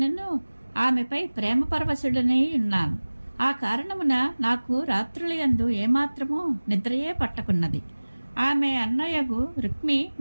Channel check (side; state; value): both; inverted; correlation -1.00